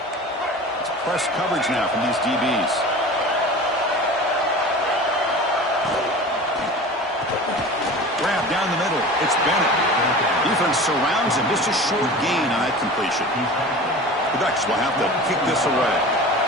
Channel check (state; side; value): normal; both; correlation 0.36